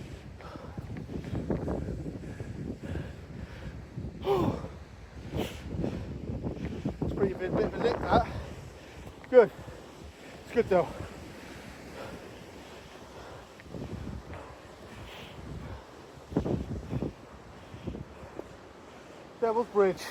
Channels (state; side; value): identical; both; correlation 1.00